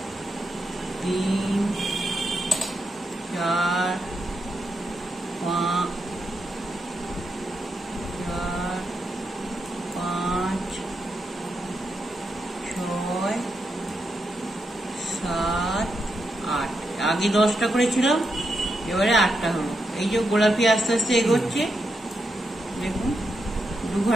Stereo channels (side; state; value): both; normal; correlation 0.84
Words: 3 4 5 6 7 8। আগে 10টা করেছিলাম, এবারে 8টা হলো। এই যে গোলাপি আস্তে আস্তে এগোচ্ছে, দেখুন